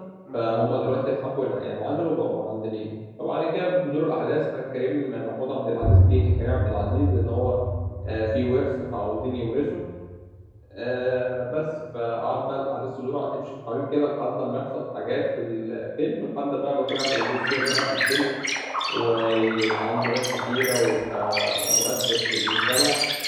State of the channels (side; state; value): both; identical; correlation 1.00